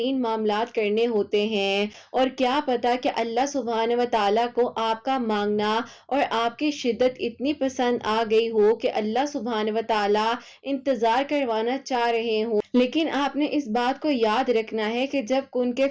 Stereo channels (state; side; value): identical; both; correlation 1.00